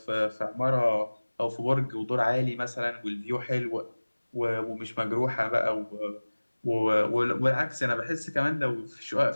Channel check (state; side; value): inverted; both; correlation -1.00